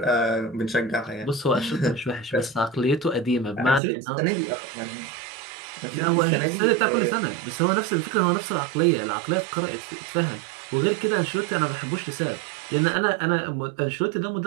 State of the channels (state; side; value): drops out; left; at 3.8 s